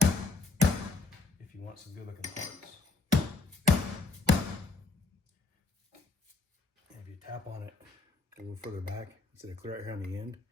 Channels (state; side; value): quieter; right; 3.8 dB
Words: if you want some good looking parts. And if you tap on it a little further back, instead of clear out here on the end,